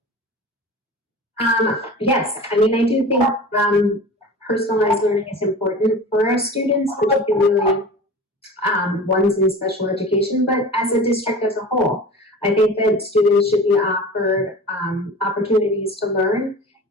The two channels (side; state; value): both; normal; correlation 0.36